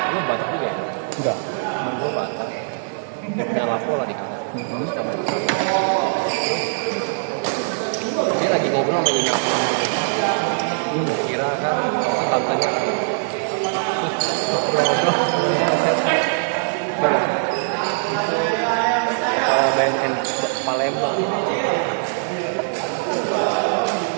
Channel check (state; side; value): silent; left; 64 dB below the other